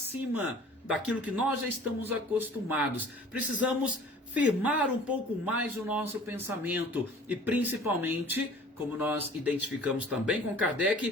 daquilo que nós já estamos acostumados. Precisamos firmar um pouco mais o nosso pensamento e, principalmente, como nós identificamos também com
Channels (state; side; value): normal; both; correlation 0.47